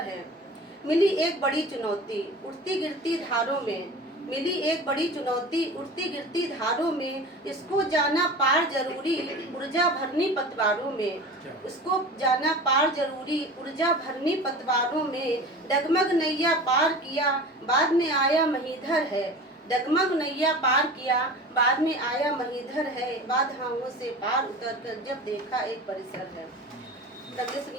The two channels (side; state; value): both; normal; correlation 0.35